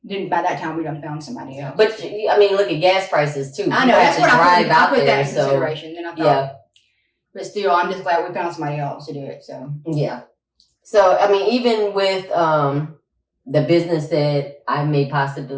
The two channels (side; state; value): both; identical; correlation 1.00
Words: Then by that time we done found somebody else. But I mean, look at gas prices too. I know that's what I put that in consideration. Then I thought, but still, I'm just glad we found somebody else to do it. So yeah. So I mean, even with the business that I may